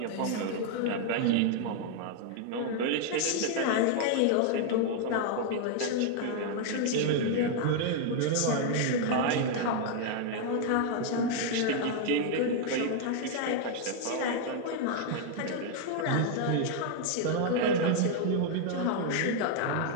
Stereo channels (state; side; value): different; both; correlation 0.00